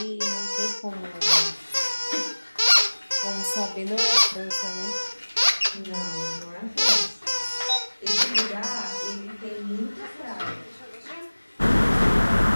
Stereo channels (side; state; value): both; inverted; correlation -1.00